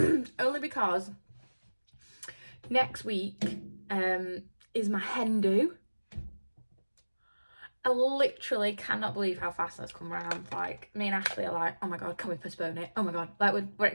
Only because next week is my hen do. I literally cannot believe how fast that's come around. Like, me and Ashley are like, oh my God, can we postpone it? Oh my God. Like, we're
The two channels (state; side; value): inverted; both; correlation -1.00